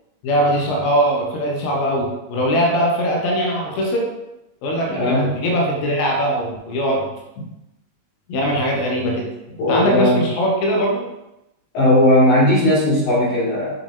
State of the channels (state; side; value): late; right; 19 ms